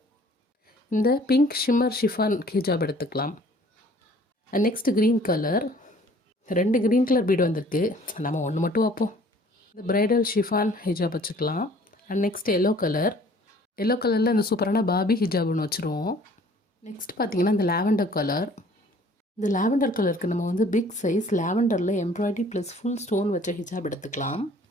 இந்த பிங்க் ஷிம்மர் ஷிஃபான் ஹிஜாப் எடுத்துக்கலாம். And next green colour, 2 green colour பீடு வந்திருக்கு, நம்ம ஒன்று மட்டும் வைப்போம். இந்த பிரைடல் ஷிஃபான் ஹிஜாப் வச்சுக்கலாம். அண்ட் நெக்ஸ்ட் எல்லோ கலரில் இந்த சூப்பரான பாபி ஹிஜாப் ஒன்று வச்சுருவோம். நெக்ஸ்ட் பார்த்திங்கன்னா இந்த லாவெண்டர் கலர். இந்த லாவெண்டர் கலருக்கு நம்ம வந்து பிக் சைஸ் லாவெண்டரில் எம்ப்ராய்டரி ப்ளஸ் ஃபுல் ஸ்டோன் வச்ச ஹிஜாப் எடுத்துக்கலாம்.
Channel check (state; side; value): normal; both; correlation 0.54